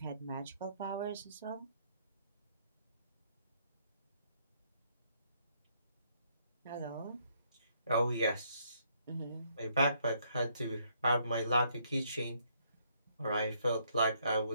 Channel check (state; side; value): inverted; both; correlation -0.71